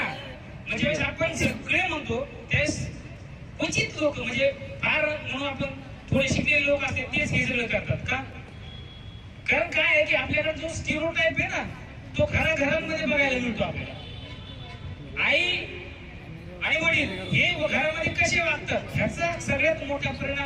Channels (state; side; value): identical; both; correlation 1.00